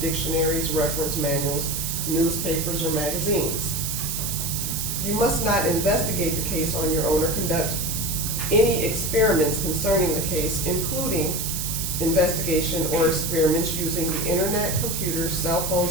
dictionaries, reference manuals, newspapers, or magazines. You must not investigate the case on your own or conduct any experiments concerning the case, including investigation or experiments using the internet, computers, cell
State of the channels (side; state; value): right; noise; hiss, 3 dB below the sound